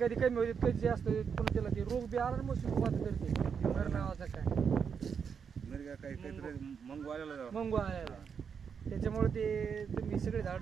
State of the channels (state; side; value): quieter; left; 6.6 dB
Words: कमी होते कधी जास्त होते पुन्हा त्याला ते रोग बी आला मग सुरुवात करते मर नावाचा काय मिरगा काहीतरी मंगू आलेला. मंगू आलेला त्याच्यामुळे ते तुम्ही सगळे